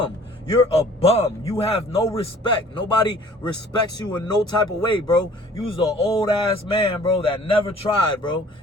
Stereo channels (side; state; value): both; normal; correlation 0.52